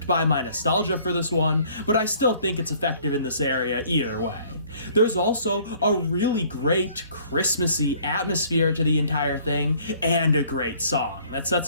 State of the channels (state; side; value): inverted; both; correlation -0.57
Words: by my nostalgia for this one, but I still think it's effective in this area either way. There's also a really great Christmassy atmosphere to the entire thing, and a great song that